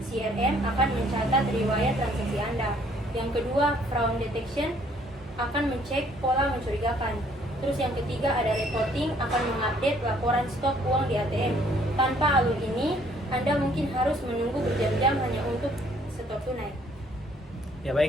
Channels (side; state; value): both; normal; correlation 0.62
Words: CRM akan mencatat riwayat transaksi Anda. Yang kedua fraud detection akan mencek pola mencurigakan. Terus yang ketiga ada reporting akan mengupdate laporan stok uang di ATM. Tanpa alur ini, Anda mungkin harus menunggu berjam-jam hanya untuk setor tunai. Ya